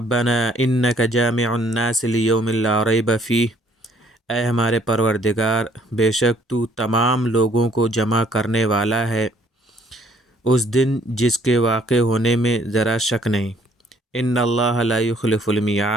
انک جامع الناس لیوم لا ریب فیہ، اے ہمارے پروردگار، بے شک تو تمام لوگوں کو جمع کرنے والا ہے اس دن جس کے واقع ہونے میں ذرا شک نہیں۔ ان اللہ لا یخلف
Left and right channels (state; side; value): normal; both; correlation 0.62